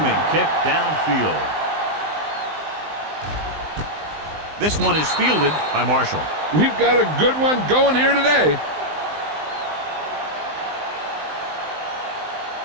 kick downfield. This one is fielded by Marshall. We've got a good one going here today.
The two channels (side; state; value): left; late; 19 ms